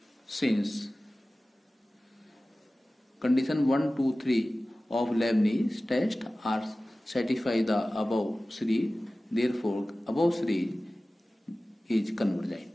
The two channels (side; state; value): both; normal; correlation 0.97